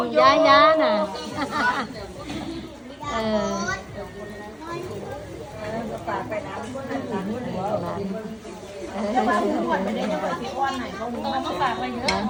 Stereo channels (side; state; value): both; identical; correlation 1.00